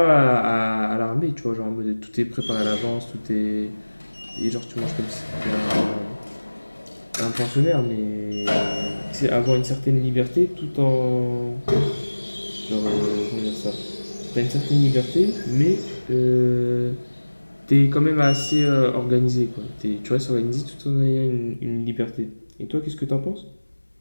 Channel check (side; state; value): both; inverted; correlation -1.00